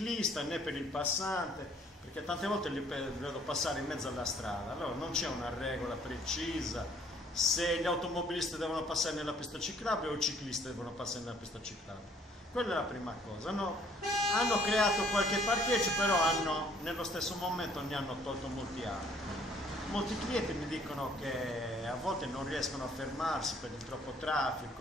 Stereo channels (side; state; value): both; normal; correlation 0.61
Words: né per il passante, perché tante volte li vedo passare in mezzo alla strada. Allora non c'è una regola precisa se gli automobilisti devono passare nella pista ciclabile o i ciclisti devono passare nella pista ciclabile. Quella è la prima cosa. Hanno creato qualche parcheggio, però nello stesso momento ne hanno tolto molti altri. Molti clienti mi dicono che a volte non riescono a fermarsi per il troppo